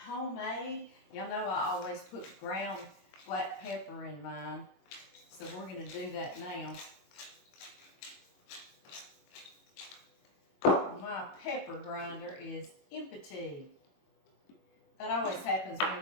homemade, y'all know I always put ground black pepper in mine. So we're going to do that now. My pepper grinder is empty. That always happens when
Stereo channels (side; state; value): right; late; 22 ms